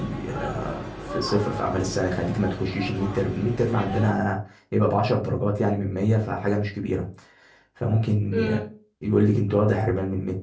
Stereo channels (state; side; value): identical; both; correlation 1.00